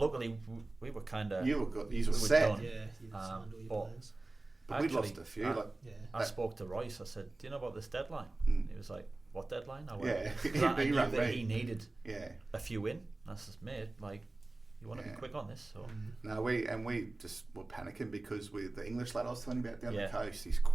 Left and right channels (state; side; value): quieter; left; 3.0 dB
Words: we were kind of. You were set. Yeah, you signed all your players. But we'd lost a few. I spoke to Royce. I said, "Do you know about this deadline?" He was like, "What deadline?" I went, I knew that he needed a few in. I said, "Mate, like, you want to be quick on this?" So no, we just were panicking because with the English lad I was telling you about down the coast, he's